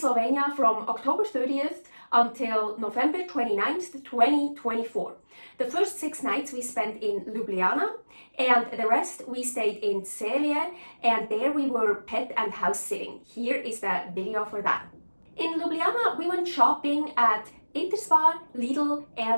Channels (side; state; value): both; inverted; correlation -1.00